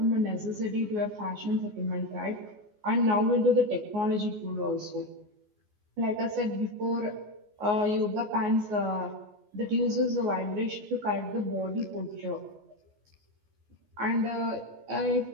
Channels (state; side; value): late; left; 14 ms